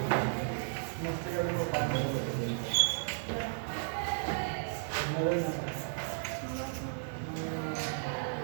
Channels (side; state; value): left; silent; digital silence